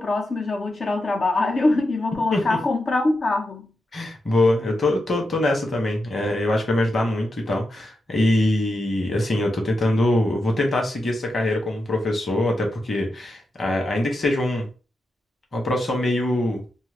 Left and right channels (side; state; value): both; normal; correlation 0.87